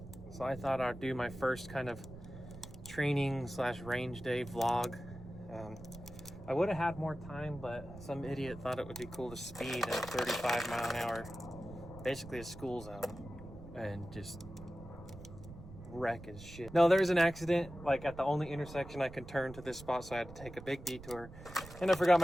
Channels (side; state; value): right; noise; rumble, 15 dB below the sound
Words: So I thought I'd do my first kind of training slash range day vlog. I would have had more time, but some idiot thought it would be cool to speed at 35 mile an hour, basically a school zone, and just wreck his shit. No, there was an accident like at the only intersection I could turn to this spot, so I had to take a big detour, and I forgot